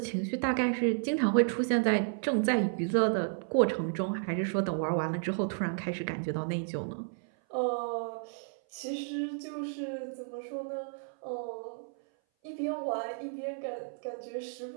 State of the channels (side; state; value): left; silent; 56 dB below the other